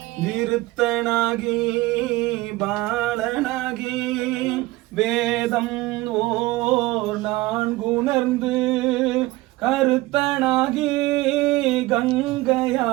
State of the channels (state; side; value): quieter; left; 19.5 dB